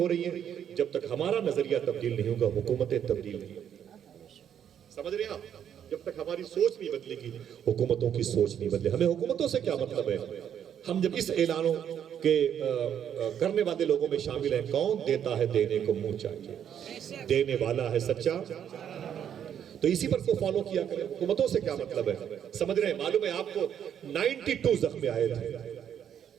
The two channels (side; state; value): left; quieter; 9.1 dB